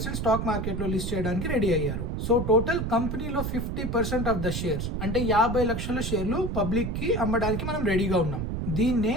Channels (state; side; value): noise; right; rumble, 3 dB below the sound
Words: స్టాక్ మార్కెట్ లో లిస్ట్ చేయడానికి రెడీ అయ్యారు. సో టోటల్ కంపెనీలో 50% ఆఫ్ ద షేర్స్ అంటే 50 లక్షల షేర్లు పబ్లిక్ కి అమ్మడానికి మనం రెడీగా ఉన్నాం. దీన్నే